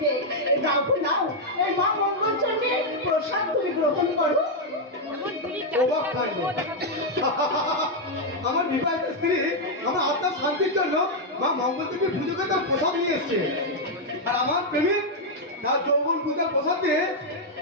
নাও নাও, এই মা মঙ্গল চন্দ্রের প্রসাদ তুমি গ্রহণ করো। আমার বিবাহিত স্ত্রী আমার আত্মার শান্তির জন্য মা মঙ্গল দেবীর পুজোকে তার প্রসাদ নিয়ে এসছে, আর আমার প্রেমিক তার যৌবন পূজার প্রসাদ দিয়ে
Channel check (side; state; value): both; normal; correlation -0.01